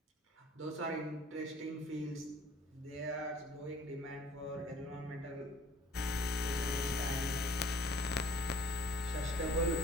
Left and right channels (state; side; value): normal; both; correlation 0.53